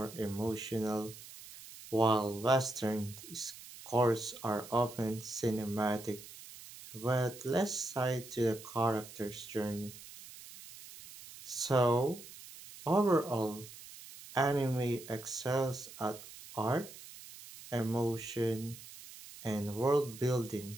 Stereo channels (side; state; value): right; noise; hiss, 16 dB below the sound